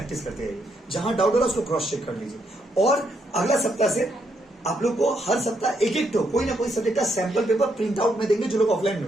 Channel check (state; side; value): normal; both; correlation 0.77